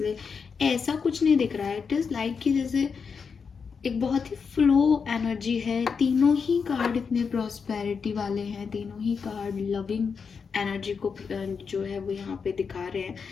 ऐसा कुछ नहीं दिख रहा है। इट इज़ लाइक कि जैसे एक बहुत ही फ्लो एनर्जी है। तीनों ही कार्ड इतने प्रॉस्पेरिटी वाले हैं, तीनों ही कार्ड लविंग एनर्जी को जो है वो यहाँ पे दिखा रहे हैं।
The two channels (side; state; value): right; quieter; 5.8 dB